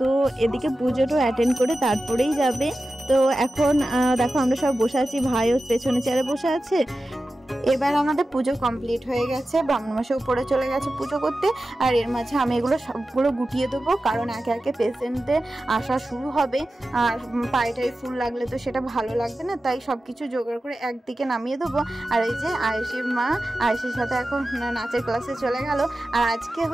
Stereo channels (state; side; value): normal; both; correlation 0.94